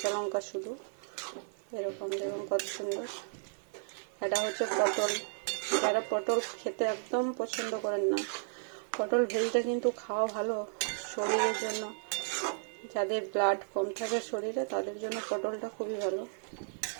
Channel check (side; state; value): left; silent; digital silence